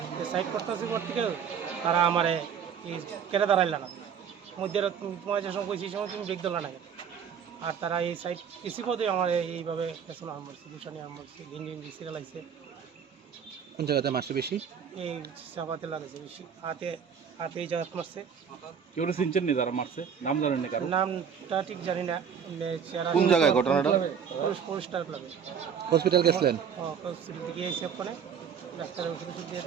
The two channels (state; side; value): quieter; left; 7.4 dB